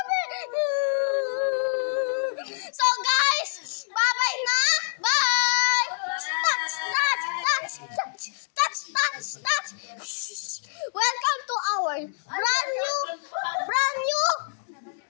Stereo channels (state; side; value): silent; right; digital silence